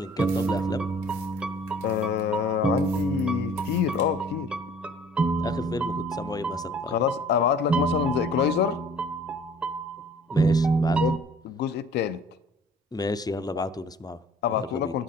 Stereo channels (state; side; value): normal; both; correlation 0.51